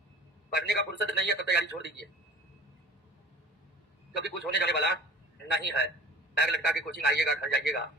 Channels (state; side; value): normal; both; correlation 0.43